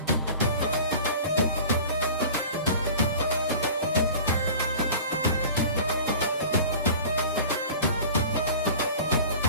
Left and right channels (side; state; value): both; inverted; correlation -0.40